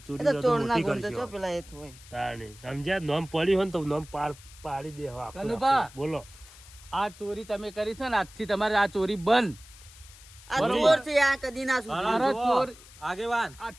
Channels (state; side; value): noise; left; hiss, 21 dB below the sound